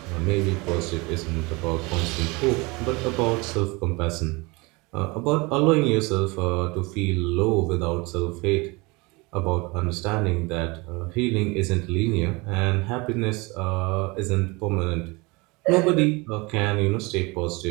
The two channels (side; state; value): left; quieter; 25.7 dB